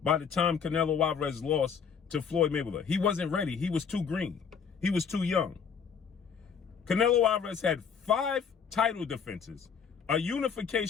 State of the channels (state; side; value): quieter; right; 6.6 dB